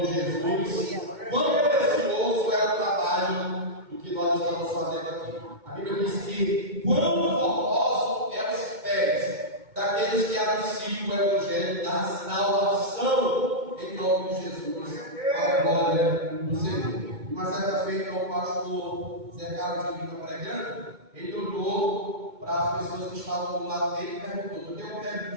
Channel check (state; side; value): late; left; 2.2 ms